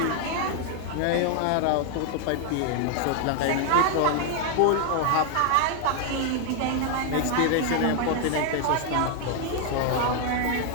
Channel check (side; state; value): both; different; correlation 0.00